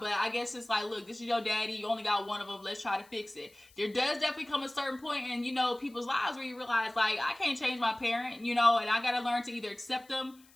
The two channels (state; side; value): noise; left; hiss, 28 dB below the sound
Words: but I guess it's like, look, this is your daddy. You only got one of them. Let's try to fix it. There does definitely come a certain point in, you know, people's lives where you realize, like, I can't change my parent, you know, and I got to learn to either accept them.